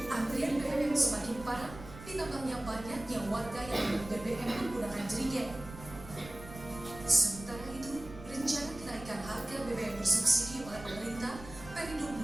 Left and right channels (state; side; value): noise; right; rumble, 14 dB below the sound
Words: Antrian BBM semakin parah ditambahnya banyaknya warga yang membeli BBM menggunakan jerigen. Sementara itu, rencana kenaikan harga BBM bersubsidi oleh pemerintah Perindo